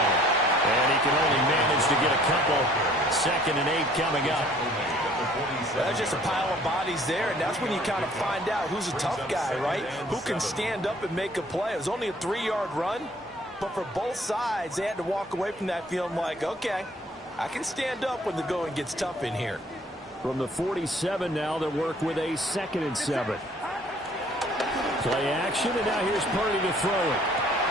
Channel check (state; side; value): normal; both; correlation 0.57